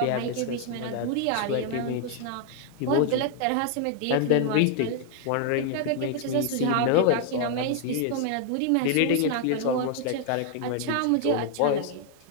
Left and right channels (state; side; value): different; both; correlation 0.00